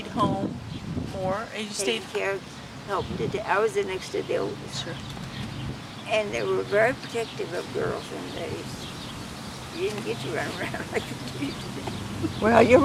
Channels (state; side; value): identical; both; correlation 1.00